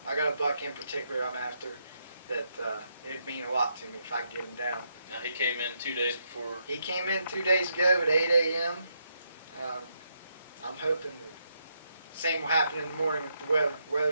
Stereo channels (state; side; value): inverted; both; correlation -0.79